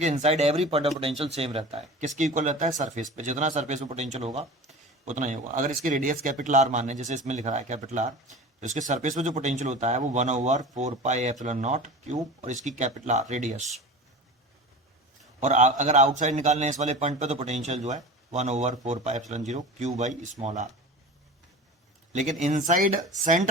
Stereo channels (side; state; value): both; normal; correlation 0.34